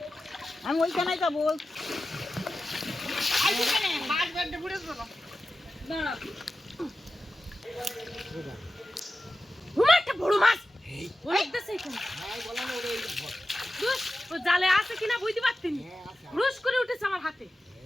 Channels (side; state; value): both; normal; correlation 0.93